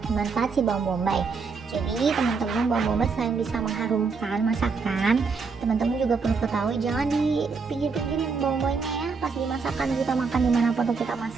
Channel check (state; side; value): quieter; left; 4.9 dB